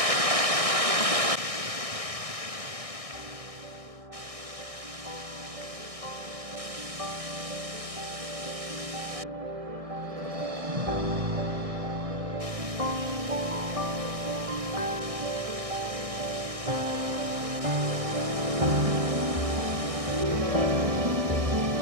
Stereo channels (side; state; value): left; late; 1.6 ms